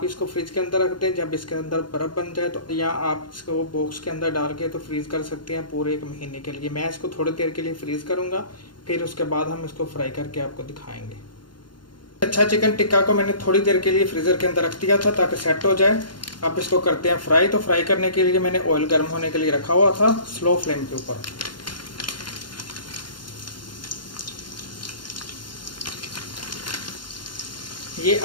इसको फ्रिज के अंदर रख दें। जब इसके अंदर बर्फ़ बन जाए तो या आप इसको बॉक्स के अंदर डाल के तो फ्रीज़ कर सकते हैं पूरे 1 महीने के लिए। मैं इसको थोड़ी देर के लिए फ्रीज़ करूँगा, फिर उसके बाद हम इसको फ्राई करके आपको दिखाएंगे। अच्छा, चिकन टिक्का को मैंने थोड़ी देर के लिए फ्रीज़र के अंदर रख दिया था ताकि सेट हो जाए। अब इसको करते हैं फ्राई। तो फ्राई करने के लिए मैंने ऑयल गर्म होने के लिए रखा हुआ था स्लो फ्लेम के ऊपर। ये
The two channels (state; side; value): late; right; 0.71 ms